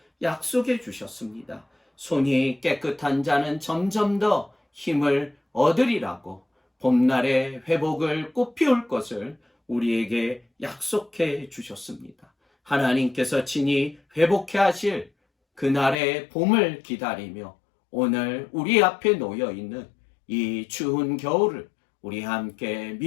약속해 주셨습니다. 손이 깨끗한 자는 점점 더 힘을 얻으리라고 봄날의 회복을 꽃피울 것을 우리에게 약속해 주셨습니다. 하나님께서 친히 회복해 하실 그날의 봄을 기다리며 오늘 우리 앞에 놓여 있는 이 추운 겨울을 우리 함께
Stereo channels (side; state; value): right; drops out; at 16.0 s